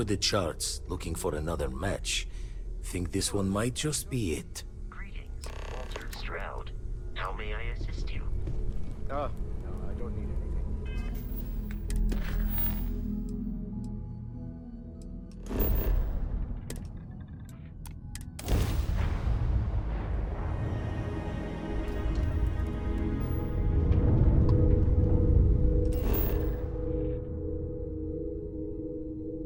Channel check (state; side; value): identical; both; correlation 1.00